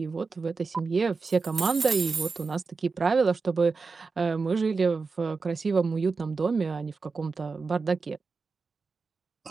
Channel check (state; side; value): quieter; left; 4.5 dB